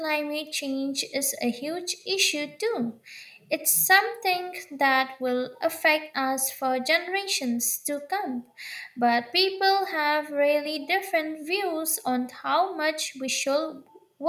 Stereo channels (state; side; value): identical; both; correlation 1.00